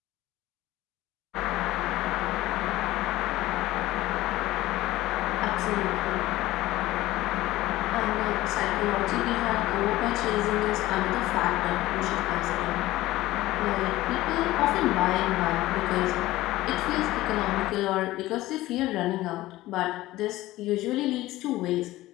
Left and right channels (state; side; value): quieter; right; 17.0 dB